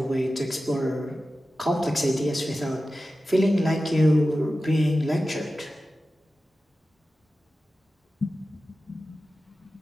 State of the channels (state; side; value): normal; both; correlation 0.94